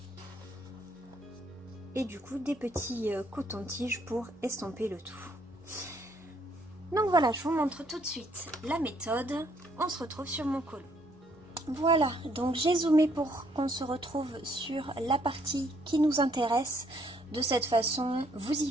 et du coup des petits cotons-tiges pour estomper le tout. Donc voilà, je vous montre tout de suite la méthode. On se retrouve sur mon colo. Voilà, donc j'ai zoomé pour qu'on se retrouve sur la partie qui nous intéresse. De cette façon, vous y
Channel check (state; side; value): normal; both; correlation 0.68